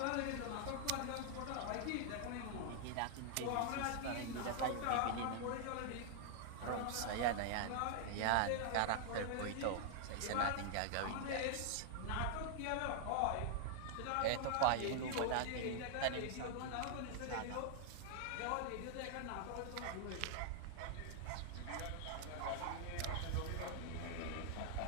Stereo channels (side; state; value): both; different; correlation 0.00